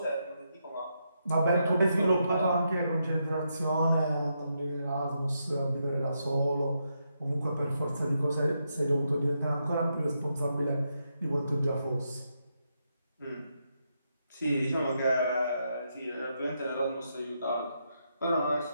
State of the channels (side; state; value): both; inverted; correlation -0.82